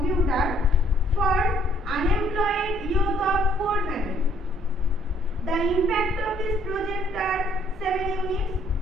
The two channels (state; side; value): normal; both; correlation 0.63